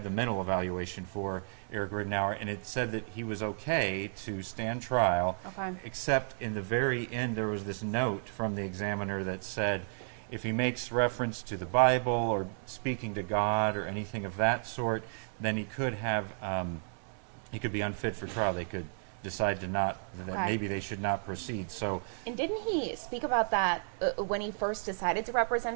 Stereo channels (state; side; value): silent; left; 56 dB below the other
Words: the mental evaluation for Eric Rittenauer, and it said that he was okay to stand trial, except in the very end there was this note from the examiner that said if he makes reference to the Bible or speaking to God or anything of that sort, then he could be unfit for trial. They could decide that maybe they should not proceed. So, And didn't he speak about that when he first decided to